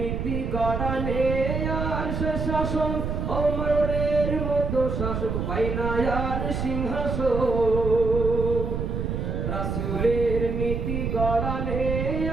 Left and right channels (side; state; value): right; noise; rumble, 2 dB below the sound